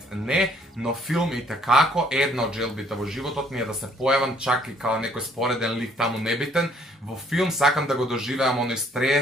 не, но филм и такако една од желбите во животот ми е да се појавам чак и као некој спореден лик таму небитен. Во филм сакам да го доживеам оној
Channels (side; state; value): both; normal; correlation 0.63